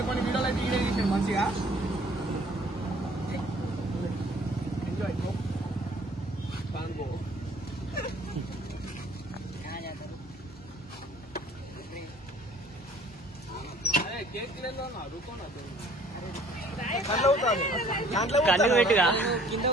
వీడియోలు అయితే వీడియో చేసాడు మంచిగా. ఎంజాయ్. అరే కేక్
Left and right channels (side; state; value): both; normal; correlation 0.55